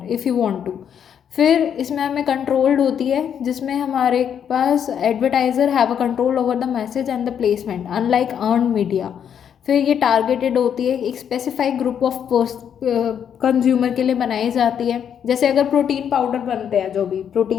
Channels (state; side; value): quieter; right; 8.5 dB